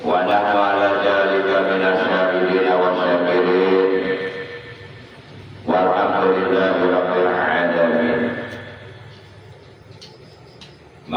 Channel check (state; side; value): identical; both; correlation 1.00